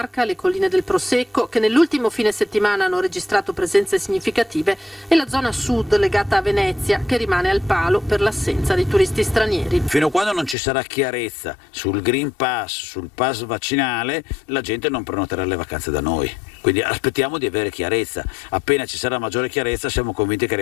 le colline del Prosecco che nell'ultimo fine settimana hanno registrato presenze significative e la zona sud legata a Venezia che rimane al palo per l'assenza di turisti stranieri. Fino a quando non ci sarà chiarezza sul Green Pass, sul pass vaccinale, la gente non prenoterà le vacanze da noi. Quindi aspettiamo di avere chiarezza. Appena ci sarà maggiore chiarezza siamo convinti che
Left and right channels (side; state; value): right; drops out; at 10.6 s